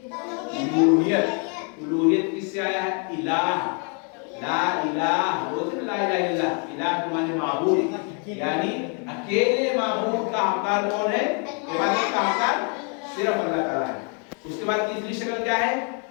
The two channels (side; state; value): right; quieter; 39.1 dB